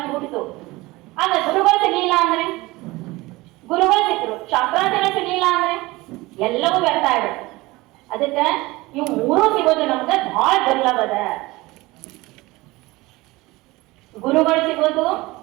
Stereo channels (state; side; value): quieter; left; 21.0 dB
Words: ಹುಟ್ಟಿತು. ಆಗ ಗುರುಗಳು ಸಿಗ್ಲಿಲ್ಲ ಅಂದ್ರೆ, ಗುರುಗಳು ಸಿಕ್ಕರು, ಶಾಸ್ತ್ರಾರ್ಥಗಳು ಸಿಗ್ಲಿಲ್ಲ ಅಂದ್ರೆ ಎಲ್ಲವೂ ವ್ಯರ್ಥ ಆಗ್ಬಿಡುತ್ತೆ. ಅದಕ್ಕೆ ಇವು ಮೂರೂ ಸಿಗೋದು ನಮ್ಗೆ ಬಹಳ ದುರ್ಲಭದ. ಗುರುಗಳು ಸಿಗೋದು,